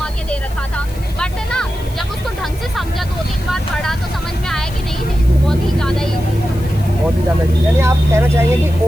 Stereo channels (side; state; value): left; noise; hiss, 21 dB below the sound